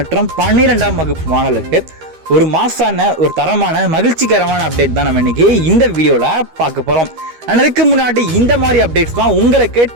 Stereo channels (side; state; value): left; late; 13 ms